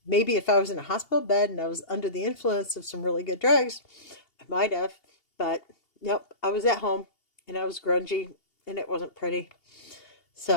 Maybe if I was in a hospital bed and I was under the influence of some really good drugs, I might have. But nope, I was at home and I was grungy and it wasn't pretty.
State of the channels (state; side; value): late; right; 2.8 ms